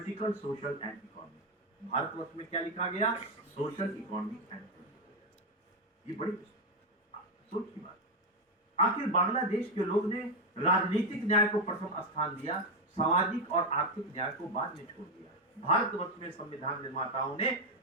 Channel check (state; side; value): normal; both; correlation 0.07